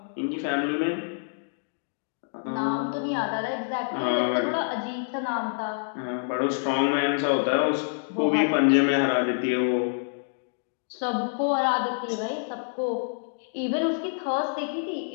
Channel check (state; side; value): silent; right; digital silence